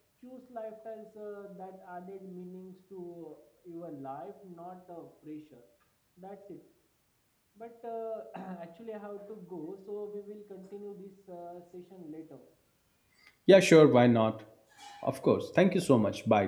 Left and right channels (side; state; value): both; identical; correlation 1.00